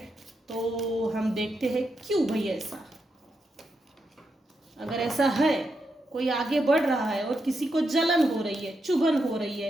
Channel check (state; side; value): normal; both; correlation 0.84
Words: तो हम देखते हैं क्यों भाई ऐसा। अगर ऐसा है, कोई आगे बढ़ रहा है और किसी को जलन हो रही है, चुभन हो रही